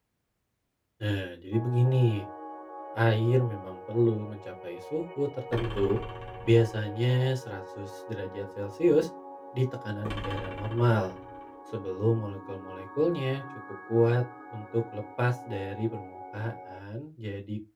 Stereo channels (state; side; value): identical; both; correlation 1.00